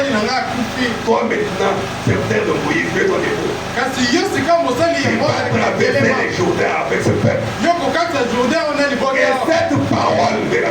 Toi maintenant, serviteur de Moïse, fais ton époux. Il va traverser les Jourdains avec ce peuple. Et cette parole de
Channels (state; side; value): identical; both; correlation 1.00